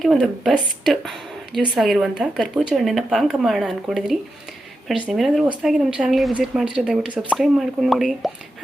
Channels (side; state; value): both; normal; correlation 0.88